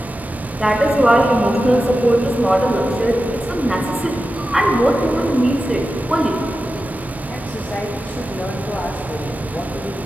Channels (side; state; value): both; normal; correlation 0.92